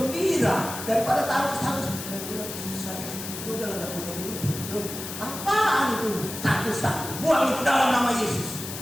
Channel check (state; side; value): noise; left; hiss, 8 dB below the sound